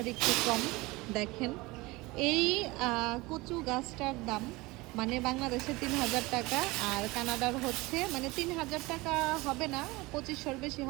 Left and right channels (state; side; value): quieter; left; 22.2 dB